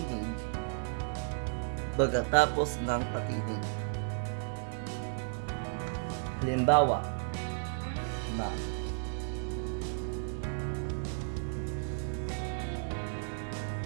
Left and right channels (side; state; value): left; silent; digital silence